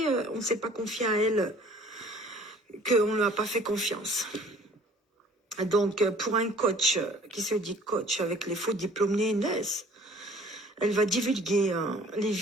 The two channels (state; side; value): normal; both; correlation 0.52